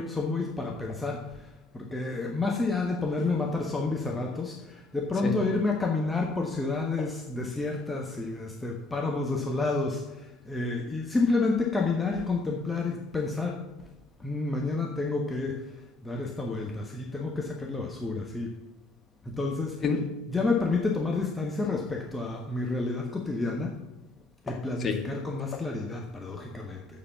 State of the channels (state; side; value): quieter; right; 3.1 dB